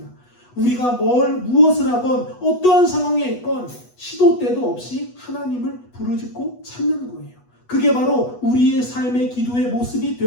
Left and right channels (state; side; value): late; right; 8.2 ms